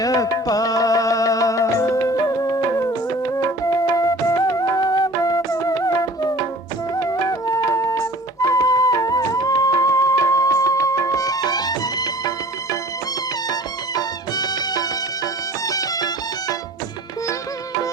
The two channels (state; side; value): normal; both; correlation 0.45